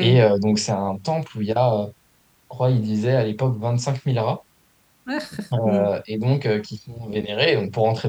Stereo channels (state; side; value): identical; both; correlation 1.00